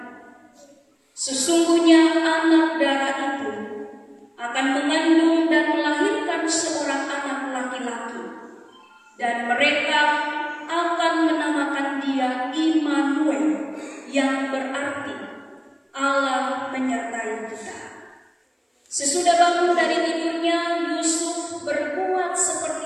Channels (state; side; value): identical; both; correlation 1.00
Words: Sesungguhnya anak darah itu akan mengandung dan melahirkan seorang anak laki-laki, dan mereka akan menamakan dia Immanuel, yang berarti Allah menyertai kita. Sesudah bangun dari tidurnya, Yusuf berbuat